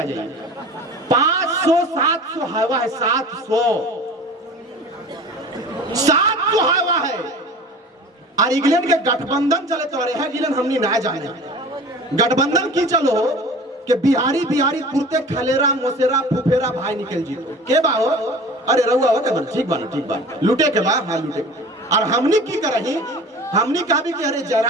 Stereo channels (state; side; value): normal; both; correlation 0.40